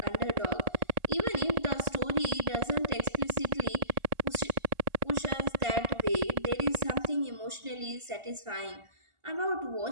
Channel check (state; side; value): late; left; 1.4 ms